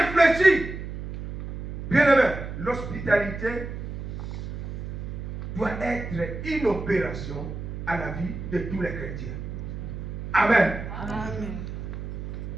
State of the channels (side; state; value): right; noise; hum, 7 dB below the sound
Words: Bien-aimé, l'hospitalité doit être une opération à la vie de tous les chrétiens. Amen. Amen.